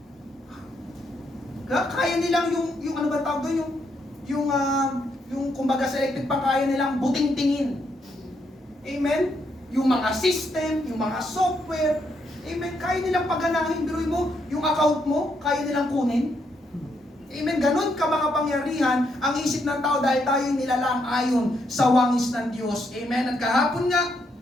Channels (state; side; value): normal; both; correlation 0.77